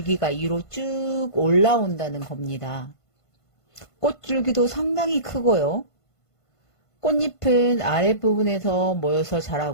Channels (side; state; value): right; late; 1.5 ms